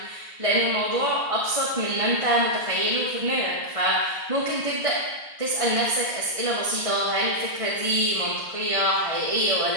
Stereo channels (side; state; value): left; late; 1.6 ms